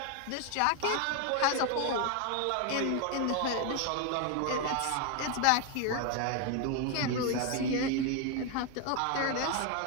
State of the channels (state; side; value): different; both; correlation 0.01